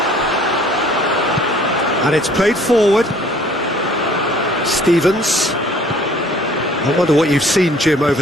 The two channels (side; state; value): both; normal; correlation 0.55